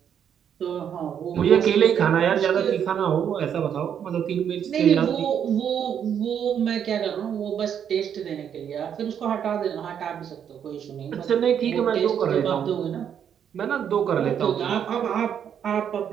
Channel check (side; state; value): left; quieter; 8.6 dB